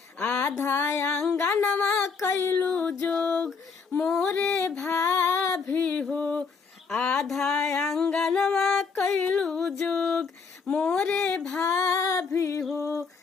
आधा आंगनवा कैलू जोग मोरे भाभी हो, आधा आंगनवा कैलू जोग मोरे भाभी हो।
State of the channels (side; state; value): right; quieter; 5.3 dB